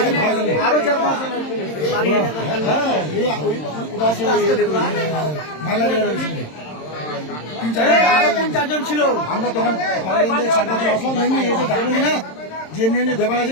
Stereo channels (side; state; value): right; late; 26 ms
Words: তিন চারজন ছিল। আমরা তখন আসলাম না যে এমনি ব্যাপার আছে